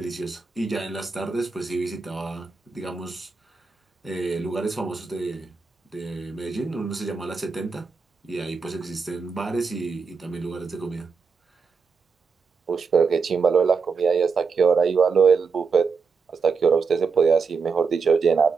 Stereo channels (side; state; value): left; quieter; 5.1 dB